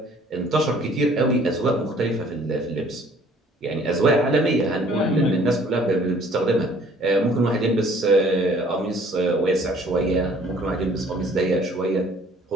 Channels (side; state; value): both; normal; correlation 0.56